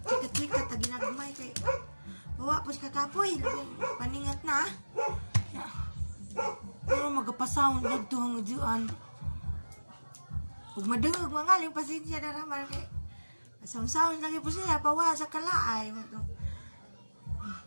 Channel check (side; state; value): both; inverted; correlation -1.00